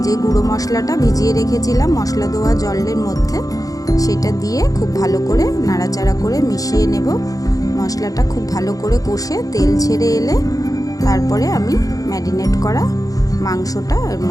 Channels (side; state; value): right; late; 0.17 ms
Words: যে গুঁড়ো মশলাটা ভিজিয়ে রেখেছিলাম মশলা ধোয়া জলের মধ্যে, সেটা দিয়ে খুব ভালো করে নাড়াচাড়া করে মিশিয়ে নেব। মশলাটা খুব ভালো করে কষে তেল ছেড়ে এলে তারপরে আমি ম্যারিনেট করা মাংসটা এর